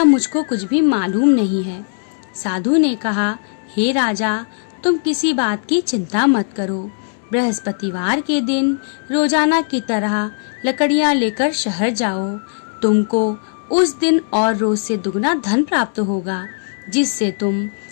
मुझको कुछ भी मालूम नहीं है। साधु ने कहा, हे राजा, तुम किसी बात की चिंता मत करो। बृहस्पतिवार के दिन रोजाना की तरह लकड़ियां लेकर शहर जाओ। तुमको उस दिन और रोज से दुगना धन प्राप्त होगा, जिससे तुम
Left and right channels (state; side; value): silent; right; digital silence